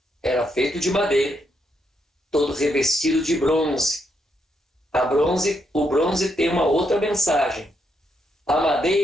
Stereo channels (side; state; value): both; normal; correlation 0.78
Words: era feito de madeira, todo revestido de bronze. O bronze tem uma outra mensagem. A